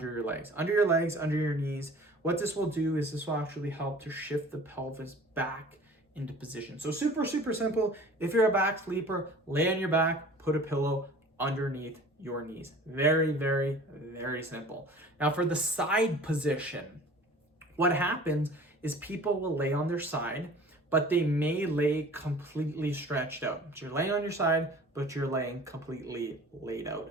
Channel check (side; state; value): both; normal; correlation 0.45